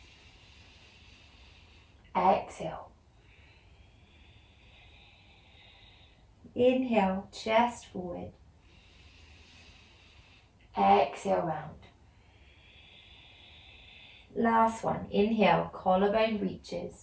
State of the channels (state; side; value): identical; both; correlation 1.00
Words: Exhale. Inhale, chest forward. Exhale, round. Last one, inhale, collarbone reaches.